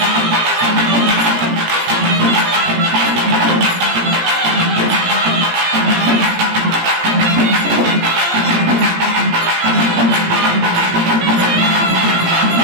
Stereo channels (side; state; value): left; late; 17 ms